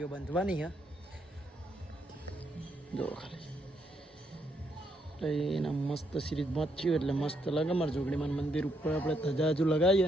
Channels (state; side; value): normal; both; correlation 0.76